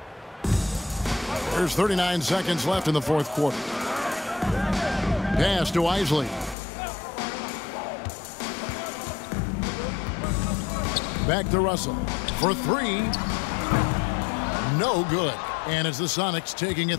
There's 39 seconds left in the fourth quarter. Pass to Isley. Back to Russell for 3. No good. And it's the Sonics taking it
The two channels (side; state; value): right; drops out; at 6.6 s